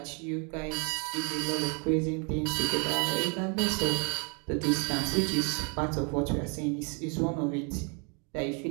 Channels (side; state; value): left; quieter; 35.7 dB